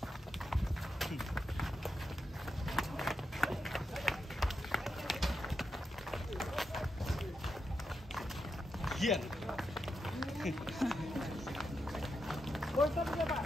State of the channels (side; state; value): both; normal; correlation 0.86